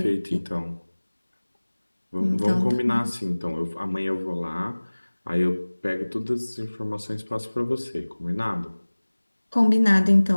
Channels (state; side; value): inverted; both; correlation -1.00